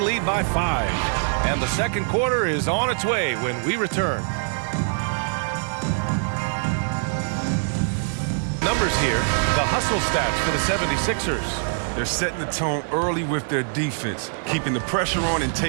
by 5. And the second quarter is on its way when we return. Numbers here. The hustle stats for the 76ers. They're setting the tone early with their defense, keeping the pressure on and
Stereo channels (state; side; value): silent; left; digital silence